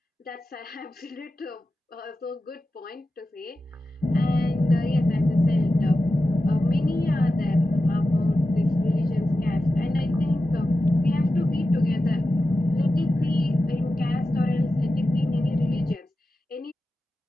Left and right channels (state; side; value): normal; both; correlation 0.92